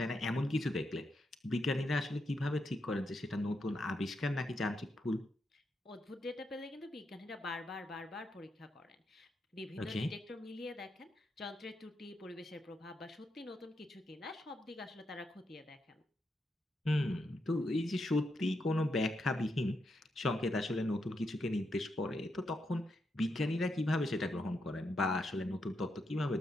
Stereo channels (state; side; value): normal; both; correlation 0.82